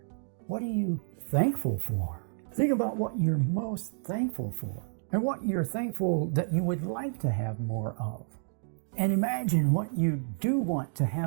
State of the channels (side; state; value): left; silent; digital silence